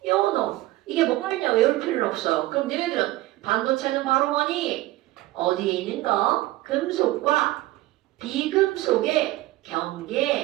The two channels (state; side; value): quieter; left; 17.6 dB